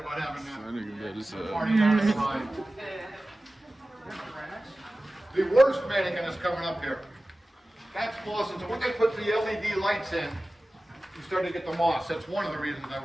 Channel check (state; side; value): normal; both; correlation 0.96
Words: having I that nigga got this party down the line. The worst mannequin is coming up here. That's moss, and so when they put the LED lights in, you start to get the moss. That's one of the reasons I